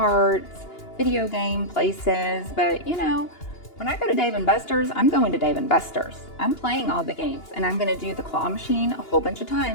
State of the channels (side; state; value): right; late; 2.8 ms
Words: video game places, but when I go to Dave & Buster's, I'm going to Dave & Buster's. I'm playing all the games, and I'm going to do the claw machine a whole bunch of